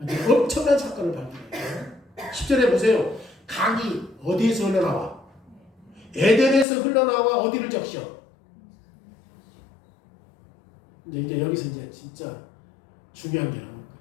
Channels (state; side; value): drops out; right; at 6.7 s